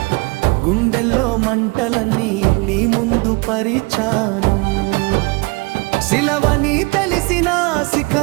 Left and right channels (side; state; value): left; quieter; 27.2 dB